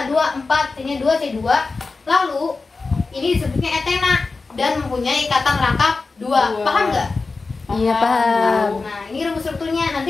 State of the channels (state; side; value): quieter; right; 4.0 dB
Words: 4, C-nya 2, C2. Lalu ini disebutnya etena dan mempunyai ikatan rangkap 2. Paham nggak? Iya paham. Nah, ini rumus strukturnya.